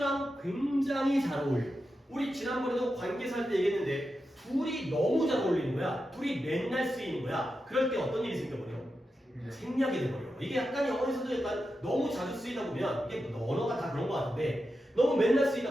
굉장히 잘 어울려요. 우리 지난번에도 관계사 할 때 얘기했는데 둘이 너무 잘 어울리는 거야. 둘이 맨날 쓰이는 거야. 그럴 때 어떤 일이 생겨버려? 생략이 돼버려. 이게 약간 영어에서도 약간 너무 자주 쓰이다 보면 이게 언어가 다 그런 것 같은데 너무 맨날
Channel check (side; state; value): both; normal; correlation 0.89